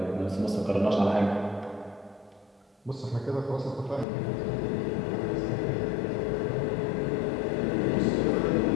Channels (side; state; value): right; drops out; at 4.0 s